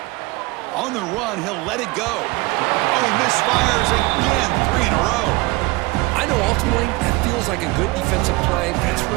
On the run, he'll let it go. Oh, he misfires again, 3 in a row. I know ultimately that feels like a good defensive play, but it's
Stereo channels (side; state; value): left; quieter; 23.0 dB